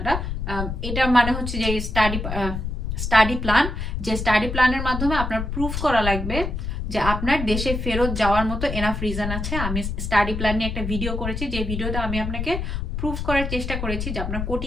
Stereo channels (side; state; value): left; noise; rumble, 3 dB below the sound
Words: এটা মানে হচ্ছে যে স্টাডি প্ল্যান, যে স্টাডি প্ল্যানের মাধ্যমে আপনার প্রুফ করা লাগবে যে আপনার দেশে ফেরত যাওয়ার মতো এনাফ রিজন আছে। আমি স্টাডি প্ল্যান নিয়ে একটা ভিডিও করেছি, যে ভিডিওতে আমি আপনাকে প্রুফ করার চেষ্টা করেছি যে আপনার